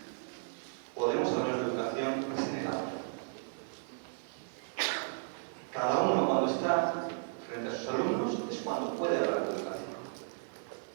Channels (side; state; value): left; silent; 55 dB below the other